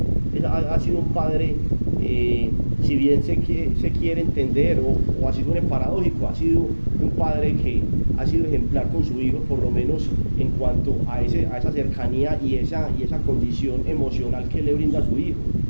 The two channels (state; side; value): inverted; both; correlation -1.00